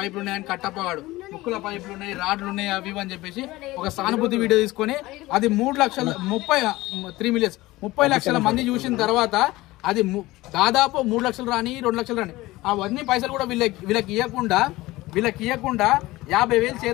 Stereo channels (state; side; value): quieter; right; 18.9 dB